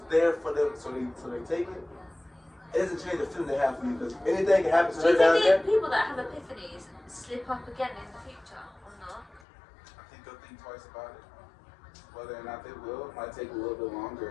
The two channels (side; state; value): right; drops out; at 9.4 s